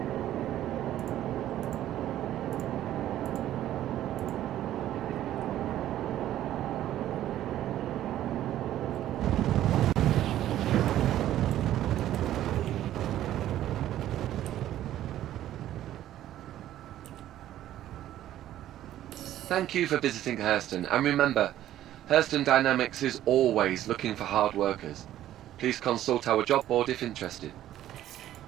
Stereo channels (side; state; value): left; quieter; 12.7 dB